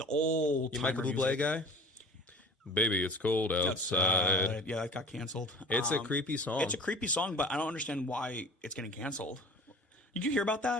old. You Michael Bublé guy? Baby, it's cold outside. Yeah, that got canceled. It's a creepy song. It's a creepy song, but I don't understand why it's getting canceled. Did you hear about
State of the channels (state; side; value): normal; both; correlation 0.42